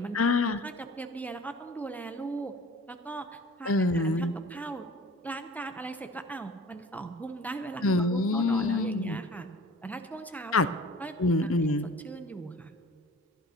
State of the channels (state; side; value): normal; both; correlation 0.45